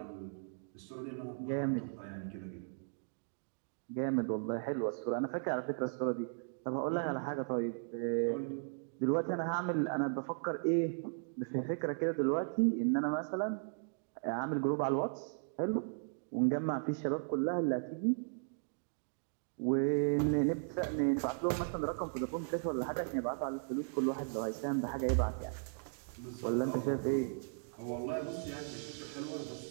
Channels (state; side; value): silent; left; digital silence